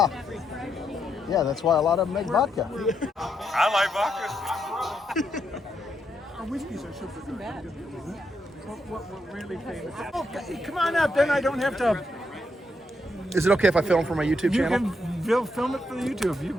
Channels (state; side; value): normal; both; correlation 0.80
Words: Yeah, that's why a lot of them make vodka. I like vodka. Our whiskeys are super good. What we're really famous. Oh, come on up, then I don't have to. Is it okay if I film for my YouTube You channel? can film it for the YouTube, you